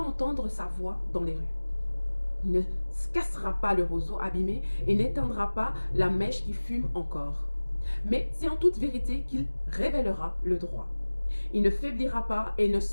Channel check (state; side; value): inverted; both; correlation -1.00